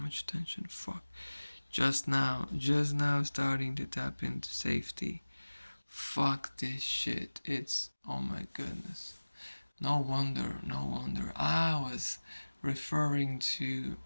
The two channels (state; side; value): inverted; both; correlation -1.00